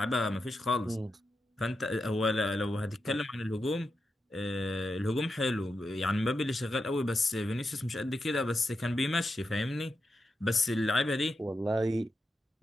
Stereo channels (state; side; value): normal; both; correlation 0.87